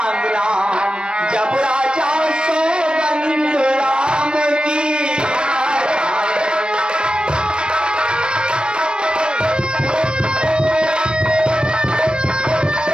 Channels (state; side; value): late; left; 0.054 ms